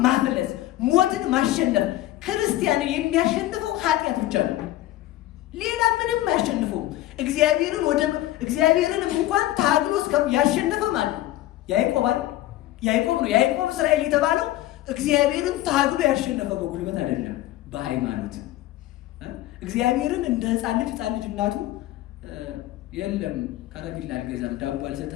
ማፍለስ፣ ሞትን ማሸነፍ። ክርስቲያንን የሚያሸንፈው ኃጢአት ብቻ ነው። ሌላ ምንም አያሸንፈውም። እግዚአብሔርን እንኳን ታግሎ ያሸነፈ ማለት ነው ያዕቆብ ነው። ያዕቆብ እስራኤል የተባለው እግዚአብሔርን ታግሎ ያሸነፈ በጉልበት አይደለም፣ በሃይማኖት። እግዚአብሔርን እንደ ሕፃን ልጅ እናቱ የለም ከረሜላ አልገዛም ዳቦ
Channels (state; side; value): quieter; right; 15.2 dB